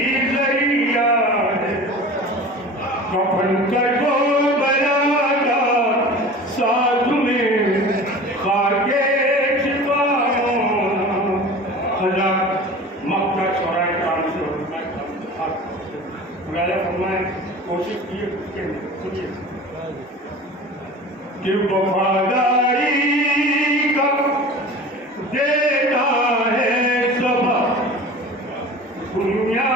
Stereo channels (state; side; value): normal; both; correlation 0.38